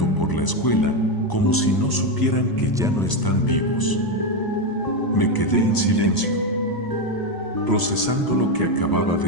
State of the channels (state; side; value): late; right; 1.0 ms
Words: por la escuela, como si no supieran que ya no están vivos. Me quedé en silencio, procesando lo que acababa